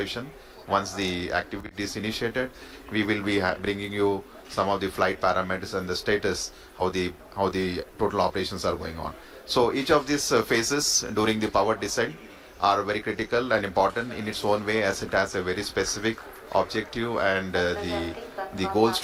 Once the activity is initiated, we will be bringing you some of the flight parameters and the status, how the total operations are going on. So each of these phases during the power descent are very critical and important in its own way, as it has a very specific objective and the goals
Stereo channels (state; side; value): identical; both; correlation 1.00